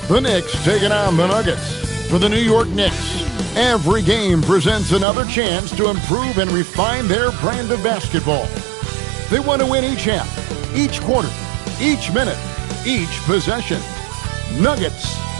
the Knicks taking on the Nuggets. For the New York Knicks, every game presents another chance to improve and refine their brand of basketball. They want to win each half, each quarter, each minute, each possession. Nuggets,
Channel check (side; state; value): left; drops out; at 5.1 s